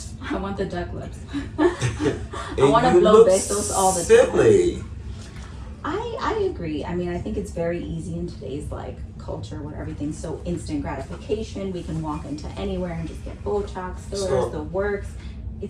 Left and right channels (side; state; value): both; identical; correlation 1.00